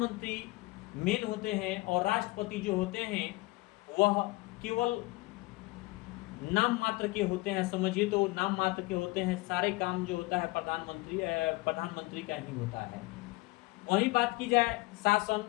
मेन होते हैं, और राष्ट्रपति जो होते हैं वह केवल नाम मात्र के होते हैं। समझिए तो नाम मात्र के होते हैं, सारे काम जो होता है प्रधानमंत्री का ही होता है। वही बात की जाए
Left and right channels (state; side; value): quieter; right; 22.1 dB